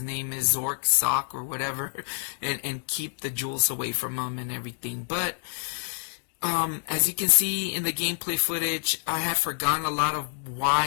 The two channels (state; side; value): silent; right; digital silence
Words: name is, Zork, Sock, or whatever, and keep the jewels away from him and everything. But as you can see in the gameplay footage, I had forgotten a lot of